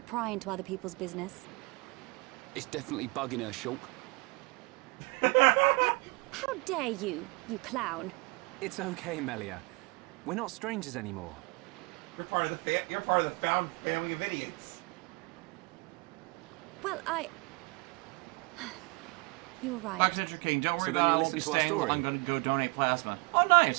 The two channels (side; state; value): left; quieter; 29.8 dB